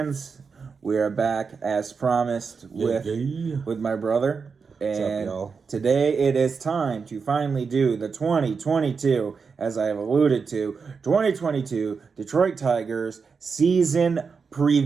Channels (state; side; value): quieter; left; 5.3 dB